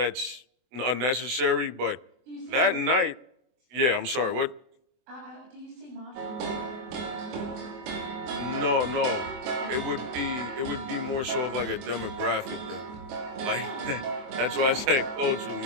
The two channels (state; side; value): late; left; 24 ms